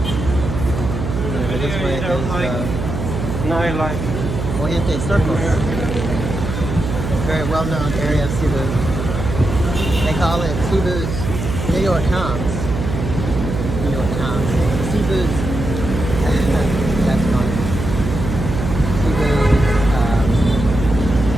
And this way is nightlife. Fuente Circle. Very well-known area of Cebu. They call it Cebu's New York Times. New York Times. Cebu's. That's funny. Cebu's.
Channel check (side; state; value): right; noise; hum, 4 dB below the sound